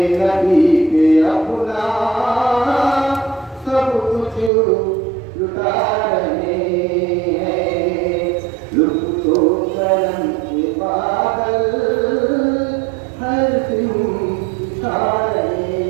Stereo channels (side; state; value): left; drops out; at 4.5 s